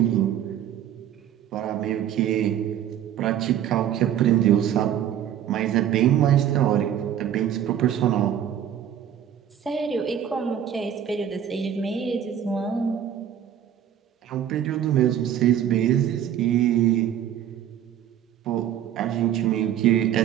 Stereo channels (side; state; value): left; quieter; 10.1 dB